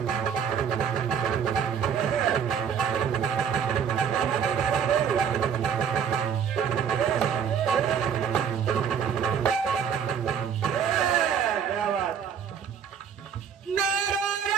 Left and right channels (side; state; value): left; quieter; 7.7 dB